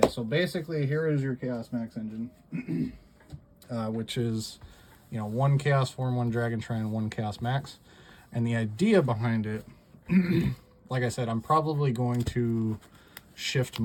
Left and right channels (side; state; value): both; identical; correlation 1.00